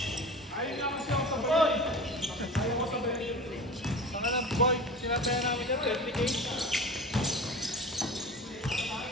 Ayaw nga kasi ako sa boy! Ayaw ko sa boy. Saka na boy, sinataya namin dyan, 30K.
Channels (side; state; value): both; normal; correlation 0.34